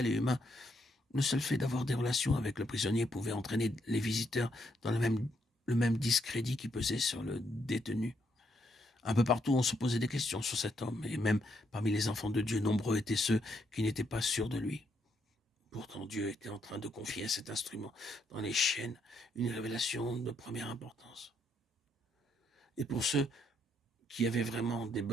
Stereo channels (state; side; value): normal; both; correlation 0.75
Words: et humain, le seul fait d'avoir des relations avec le prisonnier pouvait entraîner les visiteurs dans le même discrédit qui pesait sur le détenu. Un peu partout, on se posait des questions sur cet homme, et même parmi les enfants de Dieu, nombreux étaient ceux qui n'étaient pas sûrs de lui. Pourtant, Dieu était en train de confier à cet instrument dans les chaînes une révélation de première importance. Et pour ceux qui avaient vraiment des